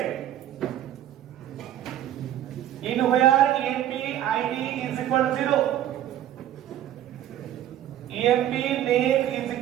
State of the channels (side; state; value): left; quieter; 11.9 dB